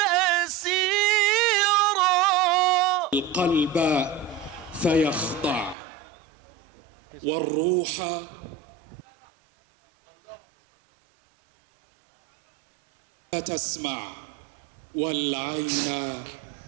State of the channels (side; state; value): left; drops out; at 5.8 s